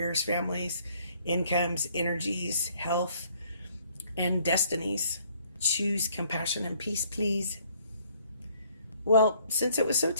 families, incomes, energies, health, and destinies. Choose compassion and peace, please. Well, since it was so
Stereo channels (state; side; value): inverted; both; correlation -0.63